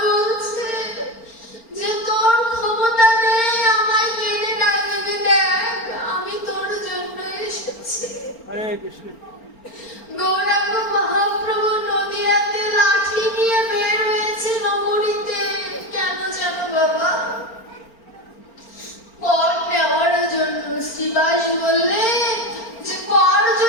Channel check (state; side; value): late; right; 4.4 ms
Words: বলছে যে তোর ক্ষমতা নেই আমায় কেড়ে ডাকবি, দেখ আমি তোর জন্য এসেছি। হরে কৃষ্ণ। গৌরাঙ্গ মহাপ্রভু নদিয়াতে লাঠি নিয়ে বের হয়েছে নগরীতে। কেন জানো বাবা? কর নেওয়ার জন্য। শ্রীবাস বললে যে কর